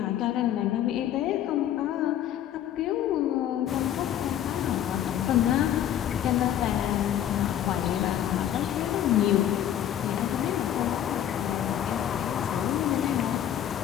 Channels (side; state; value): right; quieter; 10.9 dB